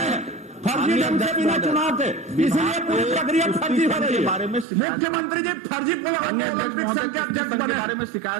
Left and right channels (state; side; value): drops out; left; at 4.7 s